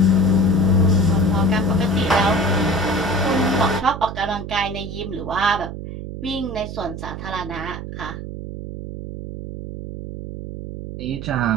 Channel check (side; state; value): right; noise; hum, 9 dB below the sound